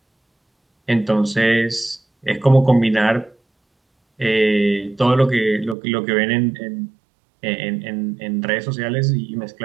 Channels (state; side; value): drops out; left; at 5.8 s